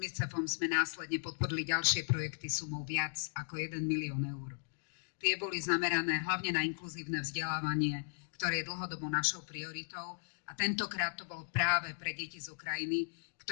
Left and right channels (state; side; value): silent; right; digital silence